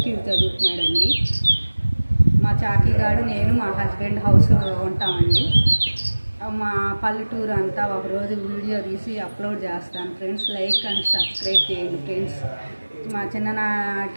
ఇయర్ చదువుతున్నాడండి. మా చాకీగాడు నేను మా హస్బెండ్ హౌస్ ఉంటామండి. మా పల్లెటూరు అంతా ఒకరోజు వీడియో తీసి అప్లోడ్ చేస్తాను ఫ్రెండ్స్. లైక్ అండ్ సబ్స్క్రైబ్ చేయండి ఫ్రెండ్స్. మా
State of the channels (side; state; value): both; inverted; correlation -1.00